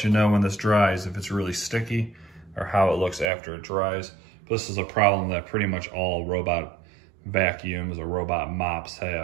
you know when this dries if it's really sticky or how it looks after it dries. This is a problem that pretty much all robot vacuums or robot mops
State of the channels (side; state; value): left; drops out; at 3.3 s